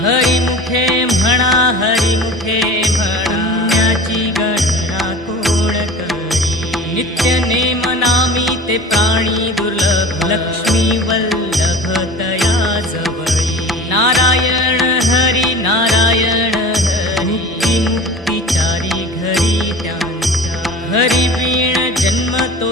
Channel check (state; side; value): normal; both; correlation 0.37